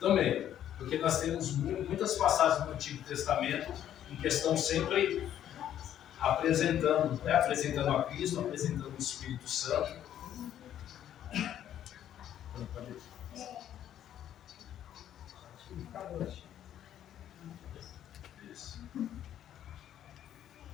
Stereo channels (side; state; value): right; quieter; 10.9 dB